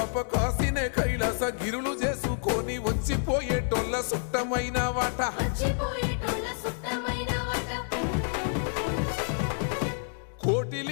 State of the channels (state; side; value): silent; right; 59 dB below the other